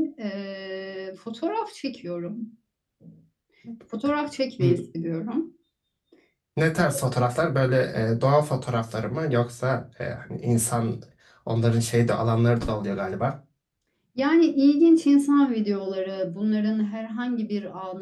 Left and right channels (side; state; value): both; identical; correlation 1.00